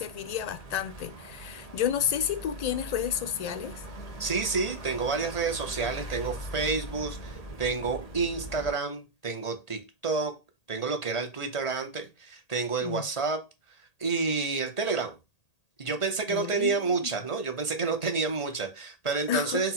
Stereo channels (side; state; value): right; late; 1.8 ms